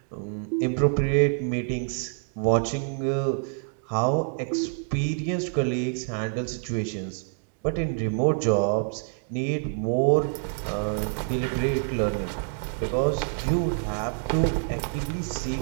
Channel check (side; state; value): left; silent; 60 dB below the other